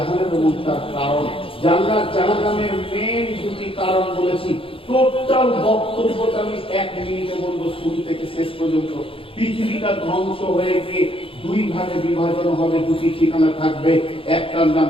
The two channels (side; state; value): right; late; 0.26 ms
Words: এবং তার কারণ। জান্নাত জাহান্নামের মেন 2টি কারণ বলেছি। টোটাল বক্তব্যটা আমি 1 মিনিটে বলবো, শুরু থেকে শেষ পর্যন্ত। পৃথিবীটা ধ্বংস হয়ে গিয়ে 2 ভাগে বিভাজন হবে, 2টি ঠিকানা থাকবে। একটার নাম